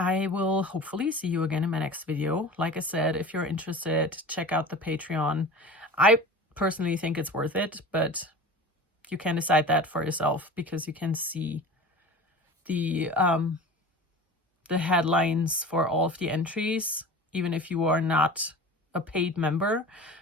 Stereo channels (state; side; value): normal; both; correlation 0.36